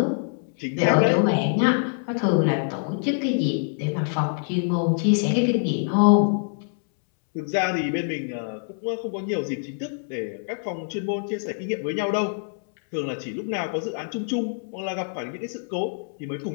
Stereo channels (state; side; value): silent; right; 62 dB below the other